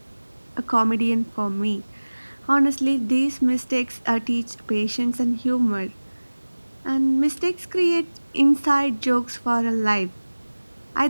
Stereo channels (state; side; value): inverted; both; correlation -1.00